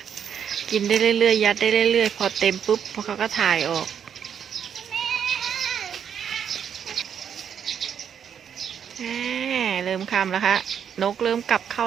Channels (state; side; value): quieter; left; 8.1 dB